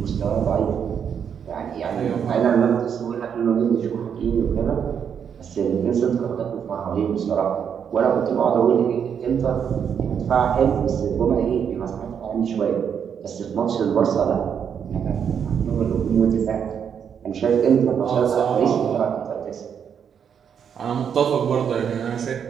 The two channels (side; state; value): left; quieter; 7.7 dB